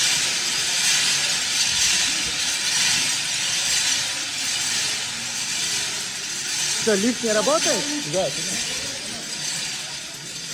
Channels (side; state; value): both; identical; correlation 1.00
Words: Что, лифт не работает? Да.